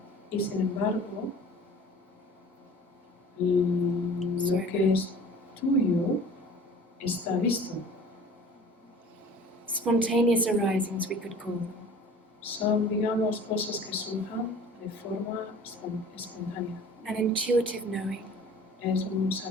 Y sin embargo, lo que es tuyo está visto. Spontaneous arisings, we could call them. Son, digamos, cosas que surjan de forma espontánea. An intuitive knowing. Es un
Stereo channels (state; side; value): normal; both; correlation 0.45